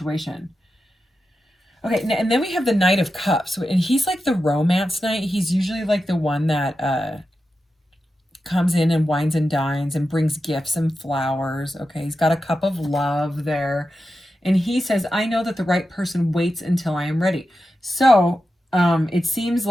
Okay, and then we have the Knight of Cups, and he's like the romance knight. He's usually like the one that comes in and wines and dines and brings gifts and flowers. Okay, he's got a cup of love there. And he says, I know that the right person waits until I am ready. So it seems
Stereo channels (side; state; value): both; normal; correlation 0.90